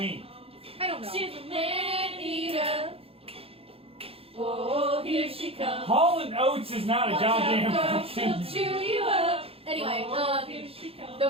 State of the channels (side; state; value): left; late; 0.28 ms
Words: I don't know. She's a man eater. Oh, here she comes. Hall and Oates is not a goddamn She'll fucking. chew you up. Anyway, Here she comes. the